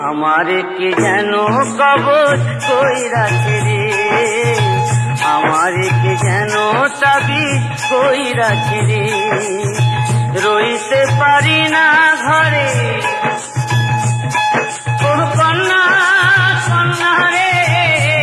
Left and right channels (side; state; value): both; identical; correlation 1.00